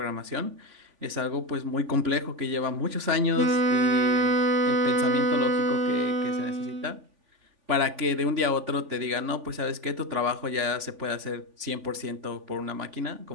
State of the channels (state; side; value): late; left; 3.5 ms